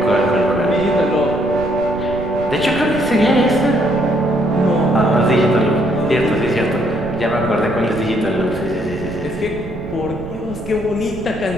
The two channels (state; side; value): noise; right; rumble, 14 dB below the sound